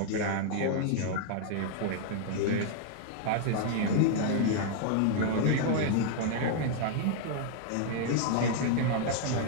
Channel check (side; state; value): both; different; correlation -0.01